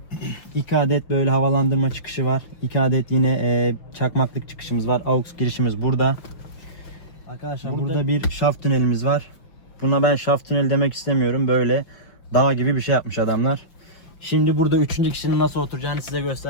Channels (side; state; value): right; late; 5.8 ms